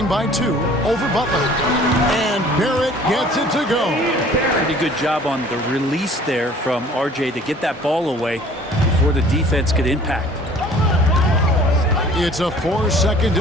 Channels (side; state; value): both; normal; correlation 0.51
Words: by 2 over Butler. And Barrett gets it to go. Pretty good job on the release there from RJ to get that ball away before the defense could impact. It's a 4-second